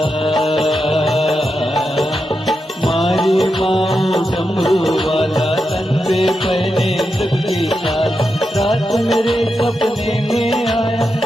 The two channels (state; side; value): normal; both; correlation 0.87